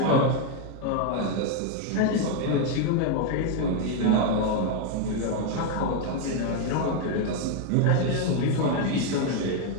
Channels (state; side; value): different; both; correlation 0.01